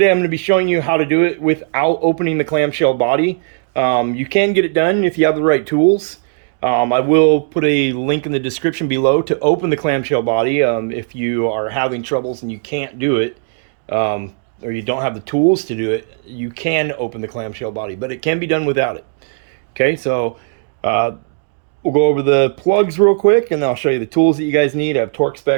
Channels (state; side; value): silent; left; digital silence